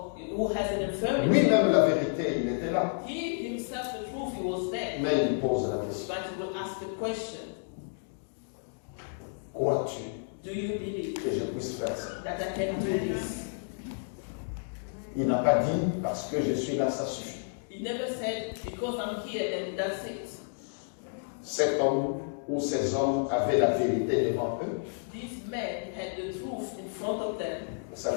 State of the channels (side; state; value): right; silent; digital silence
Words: who has an infirmity. Lui-même la vérité, il était là. He himself, the truth, he was there. Mais il pose la question. But he will ask the question, Crois-tu do you believe que je puisse faire ça? that I can do this? Il n'a pas dit parce que je suis là, ça suffit. He never said, because I'm here and that's it. cet homme ou ces hommes avaient la vérité devant eux, These men had the truth in front of them, ça